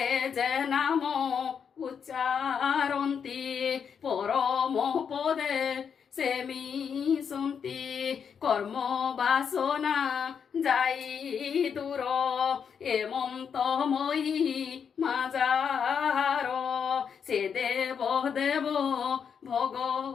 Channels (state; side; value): quieter; right; 7.0 dB